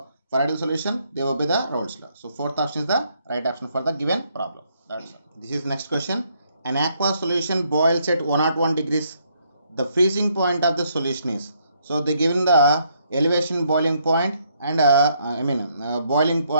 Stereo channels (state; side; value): inverted; both; correlation -0.72